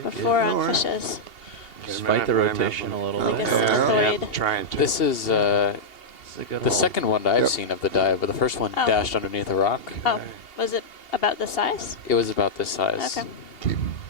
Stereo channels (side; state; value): right; late; 2.8 ms